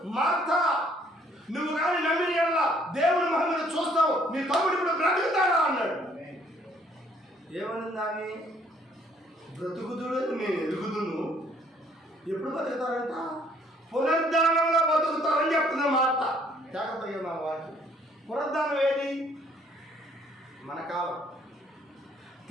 మార్తా, నువ్వు కానీ నమ్మిన ఎడల దేవుని మహిమను చూస్తావు, నీ తమ్ముడు ఇప్పుడు బ్రతుకుతాడా అన్నాడు. ఏమనింది ఆమె? బ్రతుకుతుడని నేను ఎరుగుదును. ఎప్పుడు బతుకుతారంట? పునరుద్ధానంలో బతుకుతారని చెప్తున్నా మాట. జాగ్రత్తగా మా వాక్యం. పునరుద్ధానం ఏది? మన కాలం.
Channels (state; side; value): normal; both; correlation 0.63